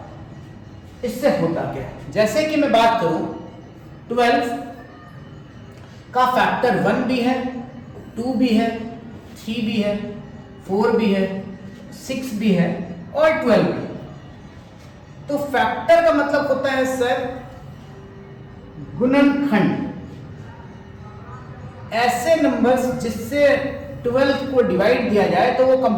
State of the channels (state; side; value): identical; both; correlation 1.00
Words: इससे होता क्या है। जैसे कि मैं बात करूं 12 का फैक्टर 1 भी है, 2 भी है, 3 भी है, 4 भी है, 6 भी है और 12 भी है। तो फैक्टर का मतलब होता है सर गुणनखंड, ऐसे नंबर्स जिससे 12 को डिवाइड दिया जाए तो वो